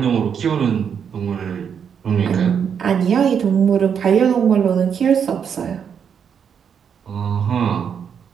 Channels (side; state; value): left; quieter; 7.4 dB